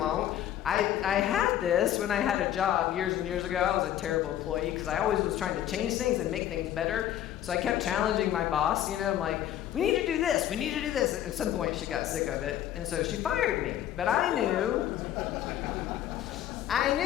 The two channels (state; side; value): quieter; right; 11.6 dB